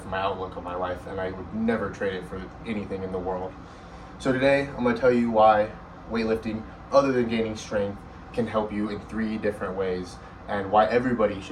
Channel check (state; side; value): identical; both; correlation 1.00